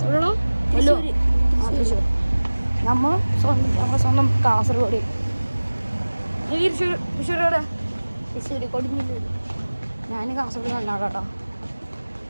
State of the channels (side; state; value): both; inverted; correlation -1.00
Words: എവിടെയാണോ? തൃശ്ശൂർ. നമ്മളെ സ്വന്തം കാസർഗോഡ്. തൃശ്ശൂർ എവിടെ? തൃശ്ശൂർ കൊടുങ്ങല്ലൂർ. ഞാൻ കാസർഗോഡ് കണ്ടാണ് കേട്ടോ.